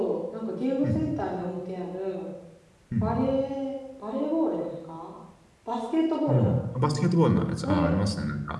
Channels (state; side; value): identical; both; correlation 1.00